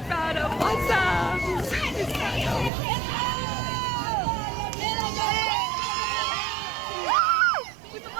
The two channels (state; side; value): drops out; left; at 2.7 s